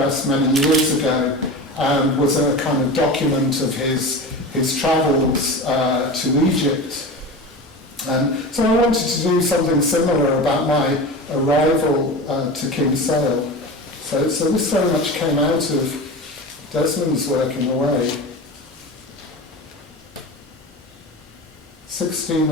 many years ago, and was a kind of document of his travels to Egypt. So I wanted to do something similar about my arrival to Kinsale. So this very much came out of Desmond's work in a way.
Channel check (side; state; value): both; normal; correlation 0.29